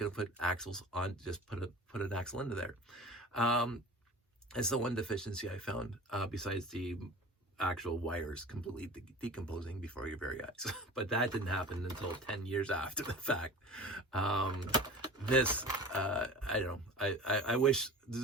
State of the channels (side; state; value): both; normal; correlation 0.38